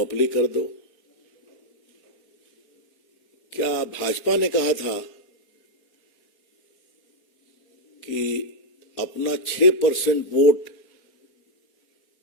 कर दो। क्या भाजपा ने कहा था कि अपना 6% वोट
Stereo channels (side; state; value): right; late; 4.0 ms